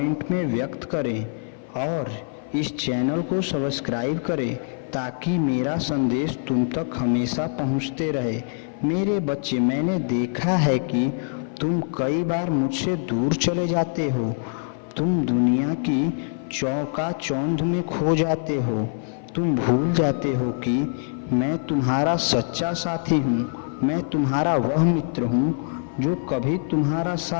में व्यक्त करें और इस चैनल को सब्सक्राइब करें ताकि मेरा संदेश तुम तक हमेशा पहुंचते रहे। मेरे बच्चे, मैंने देखा है कि तुम कई बार मुझसे दूर चले जाते हो। तुम दुनिया की चौंध में खो जाते हो। तुम भूल जाते हो कि मैं तुम्हारा सच्चा साथी हूँ। मैं तुम्हारा वह मित्र हूँ जो कभी तुम्हारा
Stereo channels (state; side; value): silent; right; 55 dB below the other